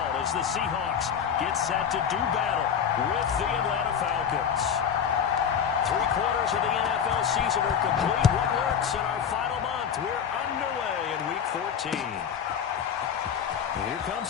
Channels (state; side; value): quieter; right; 7.8 dB